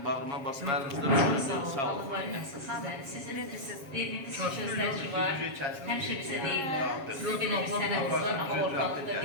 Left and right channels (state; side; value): late; left; 7.3 ms